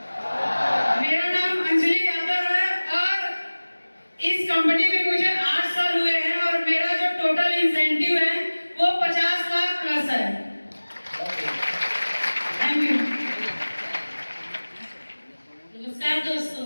मेरा नाम अंजलि यादव है और इस कंपनी में मुझे 8 साल हुए हैं और मेरा जो टोटल इंसेंटिव है वो 50 लाख प्लस है। Thank you. नमस्कार दोस्तों,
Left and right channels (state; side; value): inverted; both; correlation -1.00